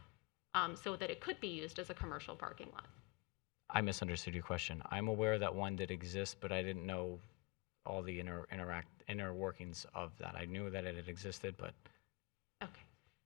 so that it could be used as a commercial parking lot? I misunderstood your question. I'm aware that one did exist, but I didn't know all the inner workings of that. I knew that it had existed, but Okay.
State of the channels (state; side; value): quieter; right; 24.9 dB